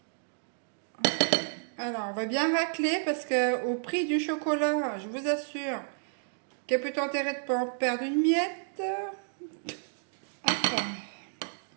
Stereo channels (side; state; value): left; silent; digital silence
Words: Alors, on va bien racler parce que au prix du chocolat, je vous assure qu'il y a plutôt intérêt de ne pas en perdre une miette. Hop.